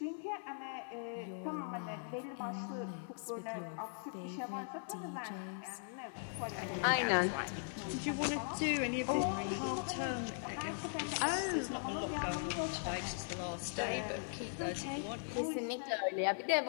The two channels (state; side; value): silent; right; 51 dB below the other